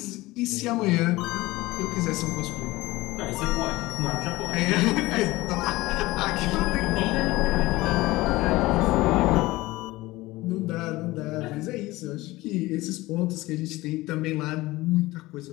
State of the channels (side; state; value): right; quieter; 19.4 dB